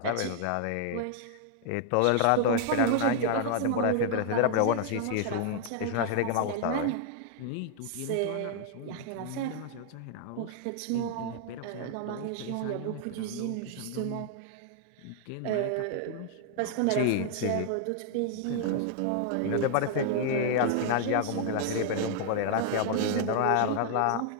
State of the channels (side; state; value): both; different; correlation -0.01